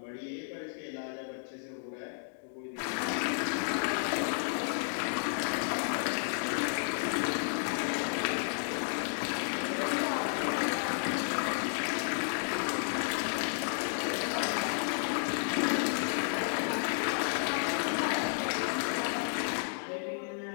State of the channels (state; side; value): silent; right; digital silence